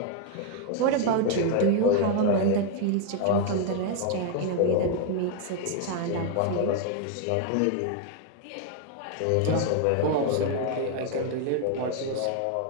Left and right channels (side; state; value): both; different; correlation 0.01